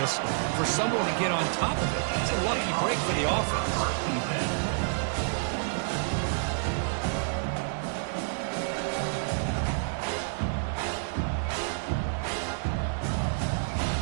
for someone to get on top of it. It's a lucky break for the offense.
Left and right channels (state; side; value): silent; left; digital silence